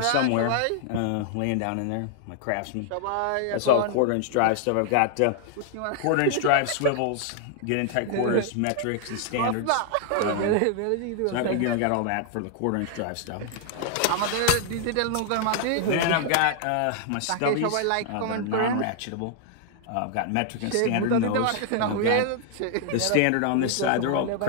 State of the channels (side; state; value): both; different; correlation 0.00